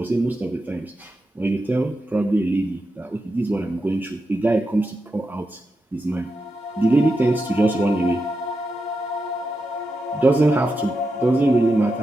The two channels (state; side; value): normal; both; correlation 0.88